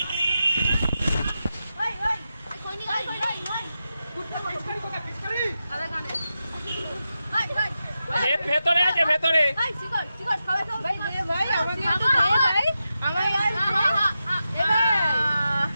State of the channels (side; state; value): both; inverted; correlation -0.90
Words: খৈনি খাই খৈনি আদা কানে ভাই ভাই ভেতরে আছে, ভেতরে। ভাই সিগারেট সিগারেট খাবে তো ভাই দে ভাই, আমাকে একটু দে ভাই, আমাকে